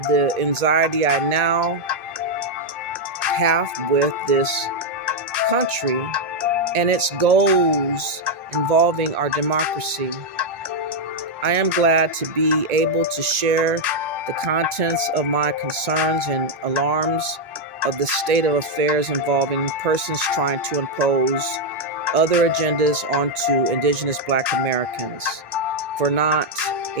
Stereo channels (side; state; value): left; late; 1.9 ms